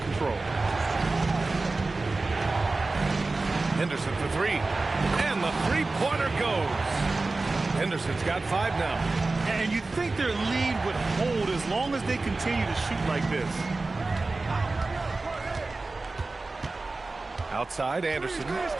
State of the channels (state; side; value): quieter; left; 3.4 dB